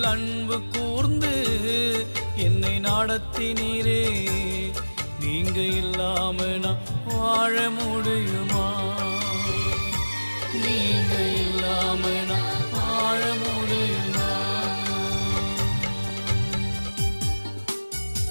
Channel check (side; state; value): both; inverted; correlation -1.00